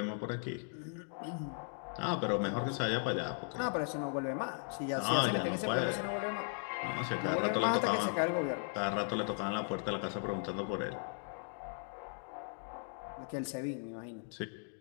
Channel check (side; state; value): right; silent; 53 dB below the other